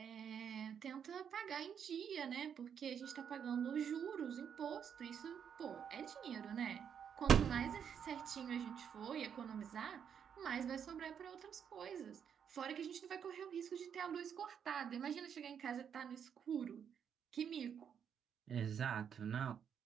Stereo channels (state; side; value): quieter; left; 7.9 dB